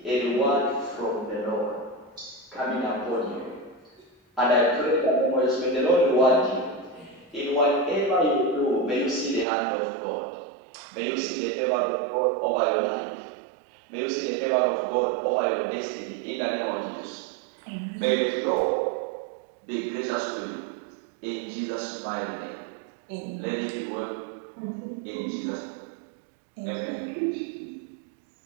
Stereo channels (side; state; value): left; drops out; at 9.5 s